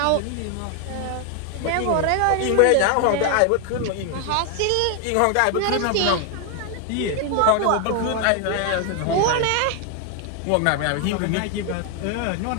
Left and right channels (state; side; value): different; both; correlation 0.00